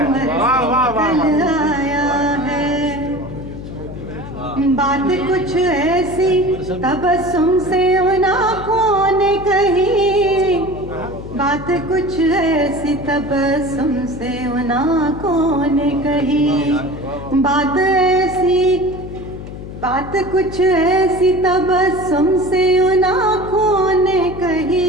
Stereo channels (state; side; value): noise; left; hum, 11 dB below the sound